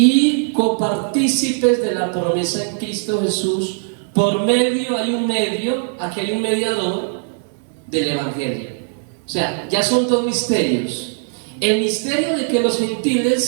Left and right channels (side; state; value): left; silent; digital silence